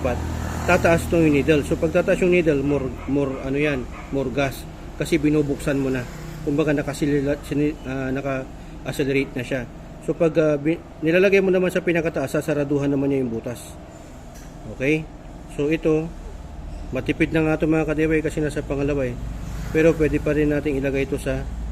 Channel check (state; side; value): identical; both; correlation 1.00